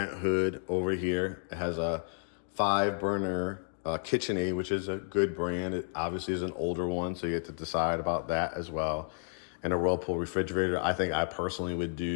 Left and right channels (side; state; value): right; silent; digital silence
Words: hood over here. It has a 5-burner KitchenAid, which is a good brand. It obviously is an older one, so you have to decide about that as well. And a Whirlpool refrigerator. I think I personally would